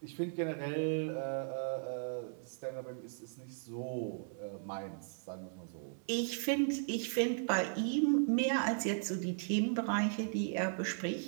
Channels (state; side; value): silent; left; 53 dB below the other